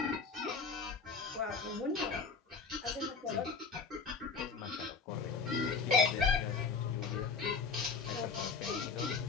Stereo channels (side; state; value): right; quieter; 5.0 dB